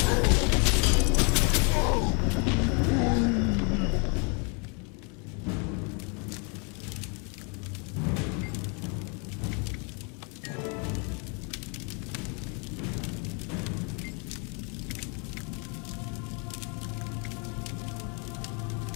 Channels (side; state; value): right; quieter; 35.5 dB